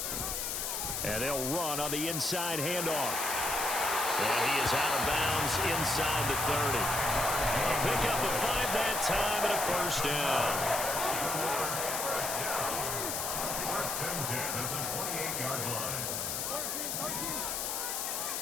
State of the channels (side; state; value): left; noise; hiss, 2 dB below the sound